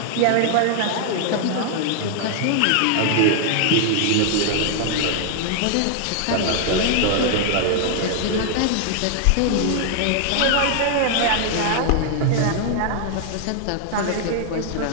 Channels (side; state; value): both; different; correlation 0.00